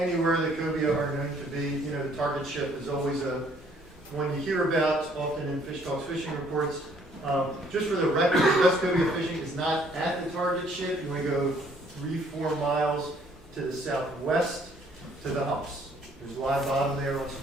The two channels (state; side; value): normal; both; correlation 0.62